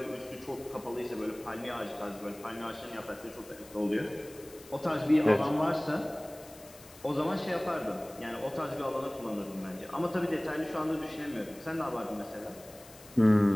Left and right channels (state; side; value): noise; left; hiss, 21 dB below the sound